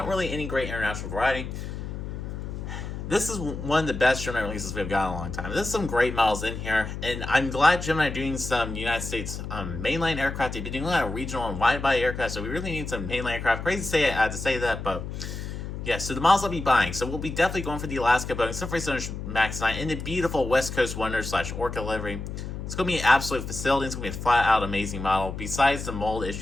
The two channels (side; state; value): left; noise; hum, 7 dB below the sound